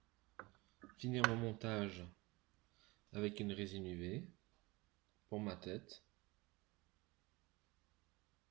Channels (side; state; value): left; quieter; 23.2 dB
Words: finir mon montage avec une résine UV pour ma tête.